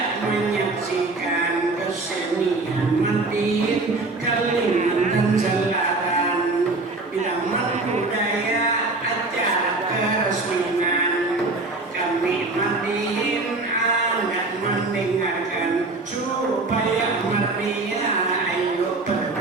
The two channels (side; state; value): left; quieter; 3.3 dB